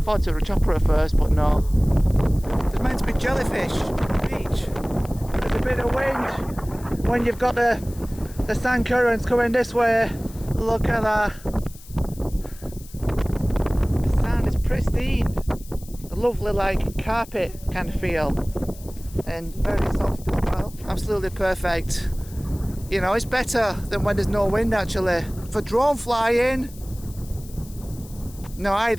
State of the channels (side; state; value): left; noise; hiss, 21 dB below the sound